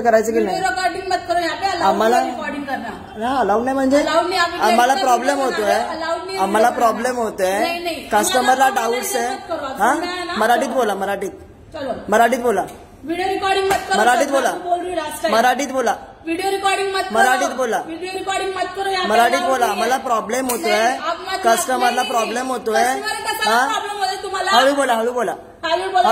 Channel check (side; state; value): both; identical; correlation 1.00